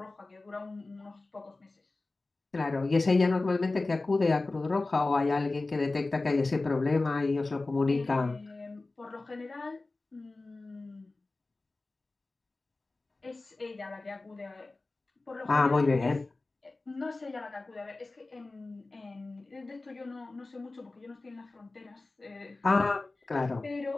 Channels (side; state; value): right; quieter; 3.3 dB